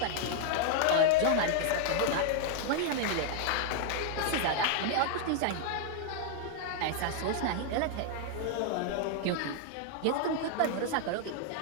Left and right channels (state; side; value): different; both; correlation 0.00